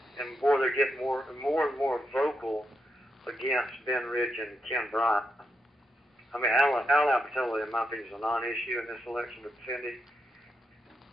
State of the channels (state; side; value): normal; both; correlation 0.83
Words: and boy, they're getting more and more vocal against Ben Rich and Ken Bryant. Al Apatow, in my opinion, is a non-issue in this election with Cindy,